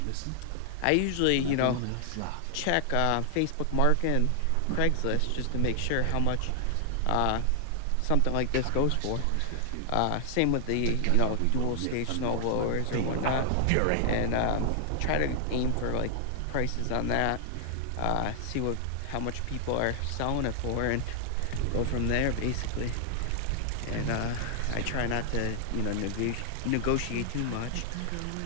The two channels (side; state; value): both; different; correlation 0.00